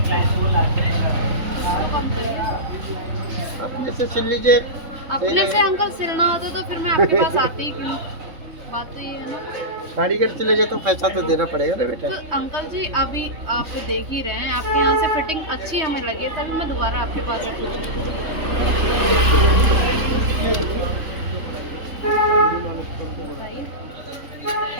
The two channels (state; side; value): late; left; 3.6 ms